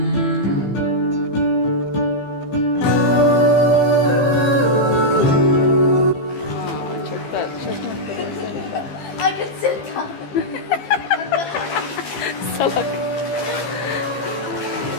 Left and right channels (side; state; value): right; late; 15 ms